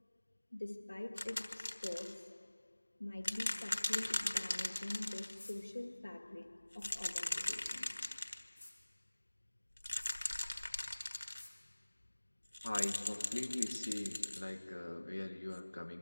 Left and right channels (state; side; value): inverted; both; correlation -1.00